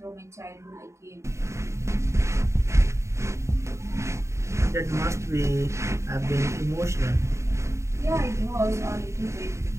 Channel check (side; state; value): left; late; 0.14 ms